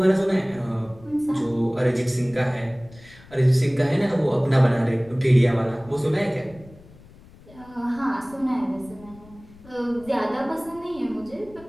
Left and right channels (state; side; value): noise; left; rumble, 23 dB below the sound